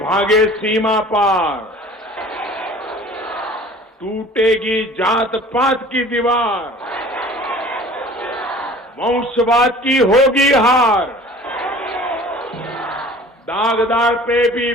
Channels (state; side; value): normal; both; correlation 0.46